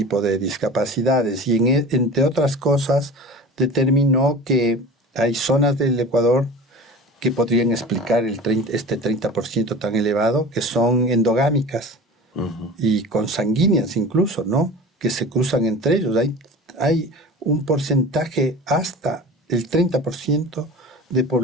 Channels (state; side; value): normal; both; correlation 0.36